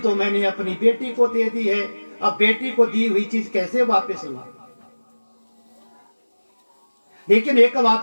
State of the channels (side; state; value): both; inverted; correlation -1.00